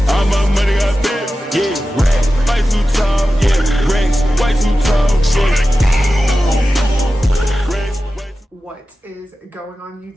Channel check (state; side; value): normal; both; correlation 0.94